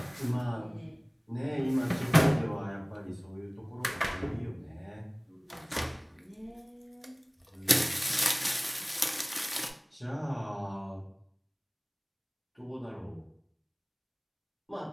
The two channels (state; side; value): identical; both; correlation 1.00